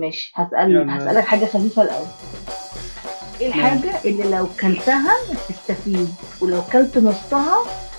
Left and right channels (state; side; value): inverted; both; correlation -1.00